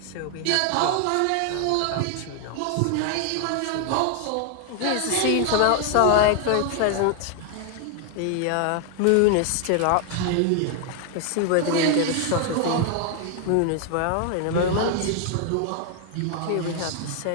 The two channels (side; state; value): both; different; correlation 0.00